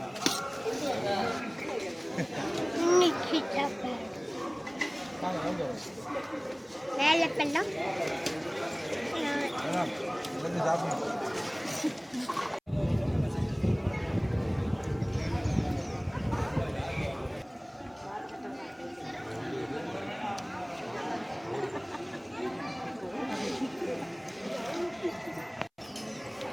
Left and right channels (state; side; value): identical; both; correlation 1.00